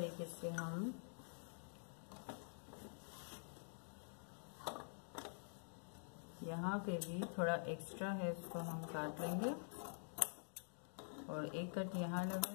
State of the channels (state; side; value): silent; right; digital silence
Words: से हम यहाँ पे भी थोड़ा एक्स्ट्रा है उसको हम काट लेंगे और एक कट यहाँ